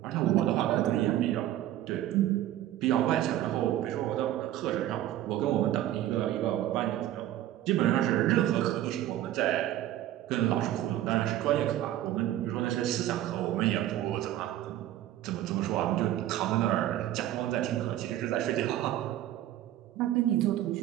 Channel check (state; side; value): quieter; left; 13.1 dB